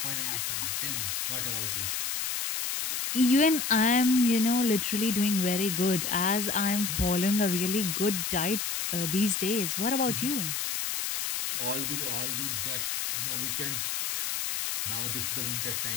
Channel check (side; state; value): left; noise; hiss, 1 dB below the sound